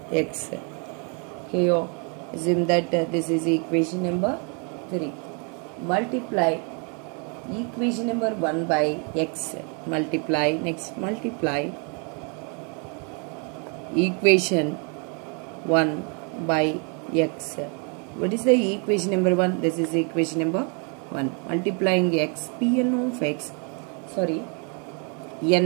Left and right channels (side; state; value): left; quieter; 37.0 dB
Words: x. Here assume that this is equation number 3. Multiply equation number 1 by x. Multiply, next multiply equation 1 by x. What is the equation number 1? This is equation number 1. Multiplying x, Pn of x, sorry,